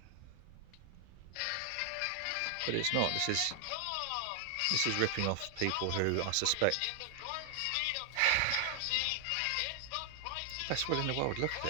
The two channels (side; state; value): both; different; correlation 0.00